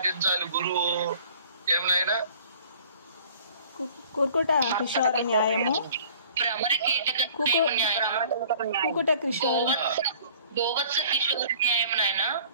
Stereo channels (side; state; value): both; inverted; correlation -0.51